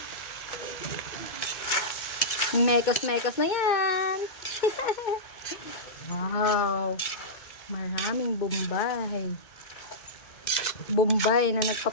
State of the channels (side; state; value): right; late; 2.2 ms